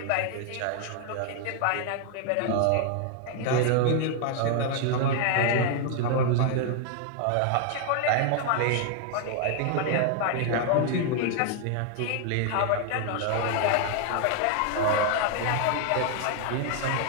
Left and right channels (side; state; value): both; different; correlation 0.00